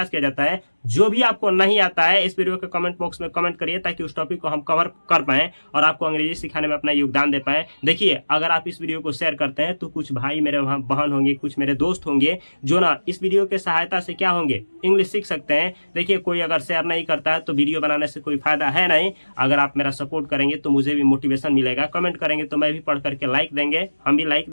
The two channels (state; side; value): inverted; both; correlation -1.00